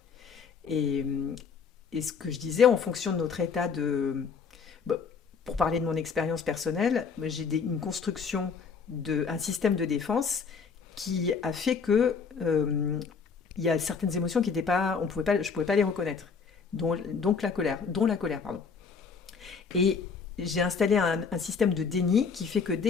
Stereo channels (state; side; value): quieter; right; 5.7 dB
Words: Et, et ce que je disais, en fonction de notre état de... Bon, pour parler de mon expérience personnelle, j'ai une construction, un système de défense qui a fait que il y a certaines émotions qui n'étaient pas, je ne pouvais pas les reconnaître, dont la colère, pardon. Et j'ai installé un système de déni qui fait que